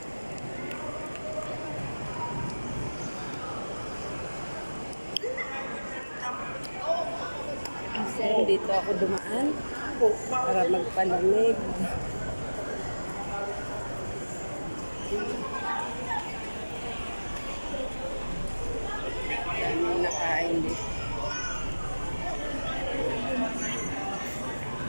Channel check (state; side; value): inverted; both; correlation -1.00